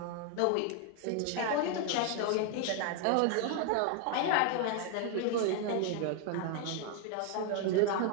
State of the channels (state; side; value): different; both; correlation 0.01